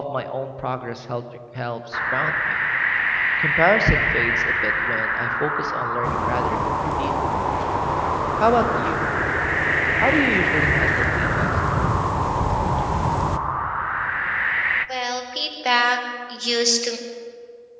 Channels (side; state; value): both; identical; correlation 1.00